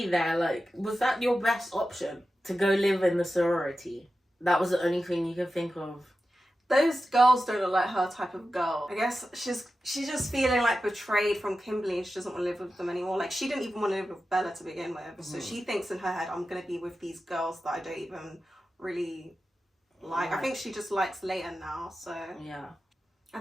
there. Like, was that your best option? To go live in the sorority? That was the only thing you could think of. Those girls don't look like her type of girl. I guess she's just feeling like betrayed from Kimberly and she doesn't want to live with them anymore. Like, she didn't even want to live with Bella to begin with. Mm-hmm. So she thinks in her head, I'm going to be with these girls that I don't even really like. I think she just likes Leighton now, so... Yeah.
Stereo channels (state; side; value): normal; both; correlation 0.92